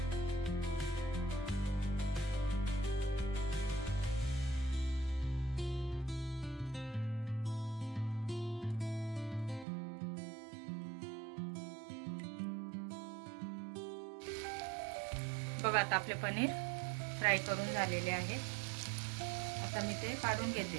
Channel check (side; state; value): left; drops out; at 9.7 s